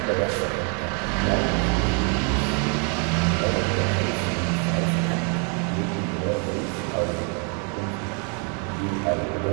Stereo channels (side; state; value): left; quieter; 37.9 dB